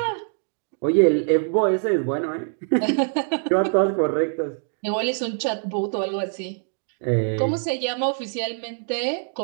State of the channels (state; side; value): silent; left; 63 dB below the other